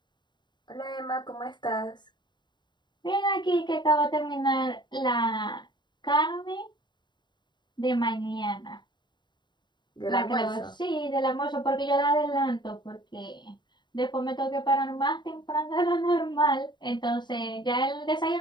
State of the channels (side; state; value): right; late; 0.22 ms